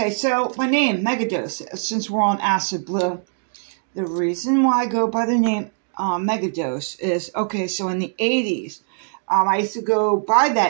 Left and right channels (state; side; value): silent; left; digital silence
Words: so my name, Megadose, since we're on Acid Blue. The reason why I go by the name Megadose is, okay, so in the 80s, I used to go by